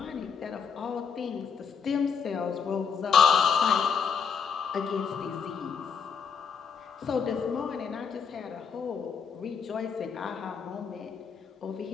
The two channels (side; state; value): right; quieter; 6.3 dB